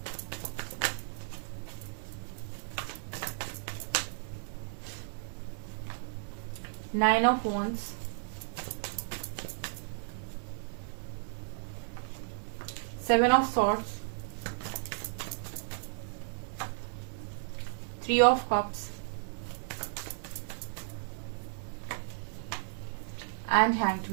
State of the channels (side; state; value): left; silent; 55 dB below the other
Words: Nine of Wands, Seven of Swords, Three of Cups, and Hanged